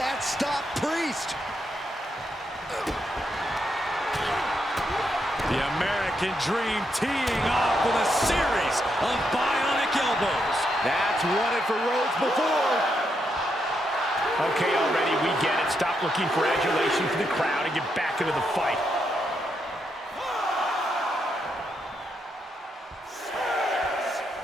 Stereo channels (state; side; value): normal; both; correlation 0.81